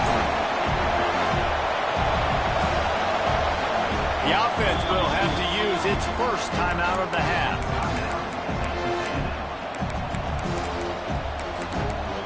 front. The offense will have to use its first timeout of the half.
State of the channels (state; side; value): identical; both; correlation 1.00